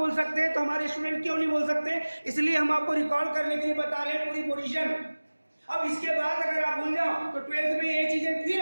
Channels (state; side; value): inverted; both; correlation -1.00